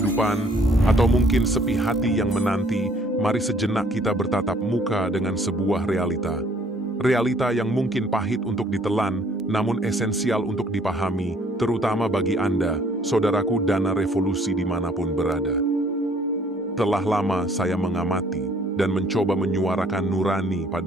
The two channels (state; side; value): normal; both; correlation 0.60